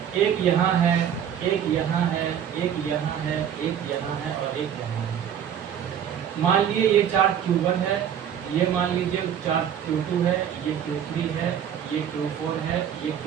एक यहाँ है, एक यहाँ है, एक यहाँ है, एक यहाँ है और एक यहाँ है। मान लिए ये चार्ज Q1 है, ये मान लीजिए चार्ज Q2 है, ये Q3 है, ये Q4 है, ये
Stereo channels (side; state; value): left; quieter; 9.0 dB